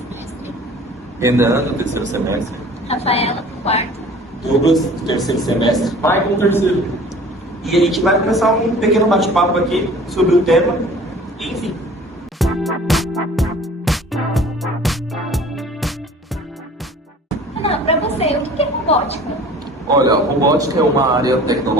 Renan, do terceiro semestre. Rafaela, do quarto. Douglas, do terceiro semestre. Michael, terceiro. E a gente vai começar um pequeno bate-papo aqui sobre o tema, enfim. Renan, para você, o que é robótica? Olha, a robótica é uma área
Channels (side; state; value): both; normal; correlation 0.47